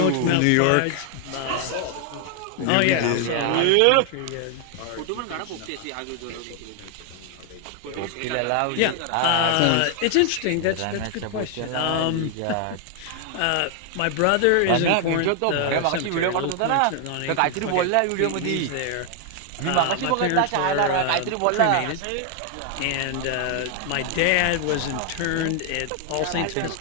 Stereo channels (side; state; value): both; different; correlation 0.00